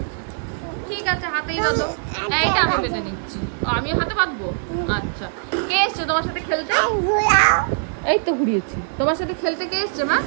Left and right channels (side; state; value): left; silent; digital silence